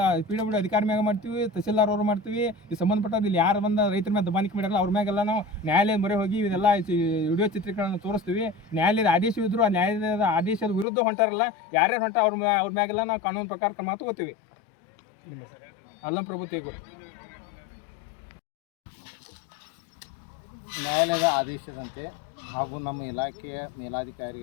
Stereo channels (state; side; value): drops out; right; at 10.9 s